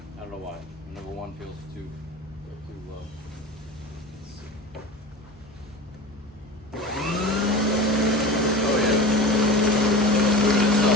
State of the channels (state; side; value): normal; both; correlation 0.32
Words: I don't know why. Number 1 feels too low. Let's see. Oh yeah. Moving